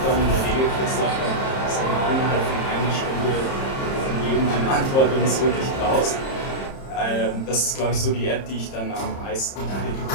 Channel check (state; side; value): late; right; 30 ms